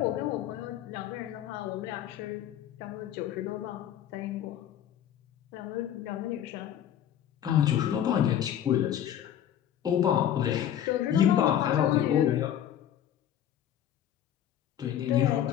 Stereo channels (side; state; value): right; quieter; 10.5 dB